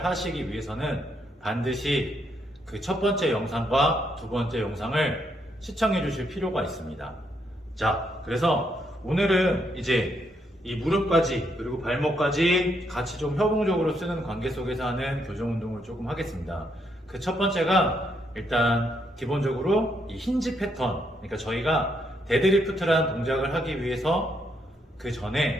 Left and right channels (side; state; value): both; normal; correlation 0.76